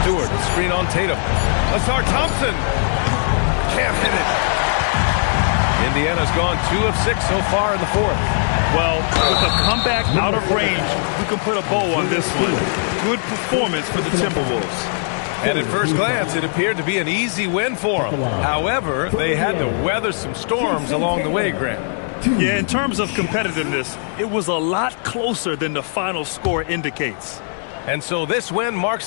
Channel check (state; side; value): silent; right; digital silence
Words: Stewart, screen on Tatum. Asar Thompson. Can't hit it. Indiana's gone 2 of 6 so far in the fourth. Well, with a comeback out of range, we can put a bow on this one. Good performance for the Timberwolves. And at first glance, it appeared to be an easy win for them. However, they had to weather some storms along the way, Grant. Yeah, in terms of competitiveness, it was a lot closer than the final score indicates. And so this win